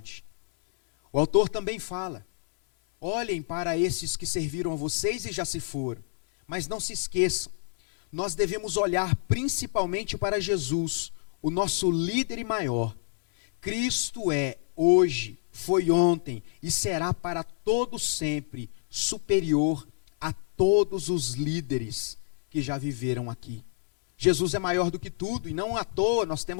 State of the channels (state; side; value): silent; right; 57 dB below the other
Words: O autor também fala: olhem para esses que serviram a vocês e já se foram, mas não se esqueçam, nós devemos olhar principalmente para Jesus, o nosso líder e maior. Cristo é hoje, foi ontem e será para todo sempre superior a todos os líderes que já viveram aqui. Jesus é maior do que tudo, e não à toa nós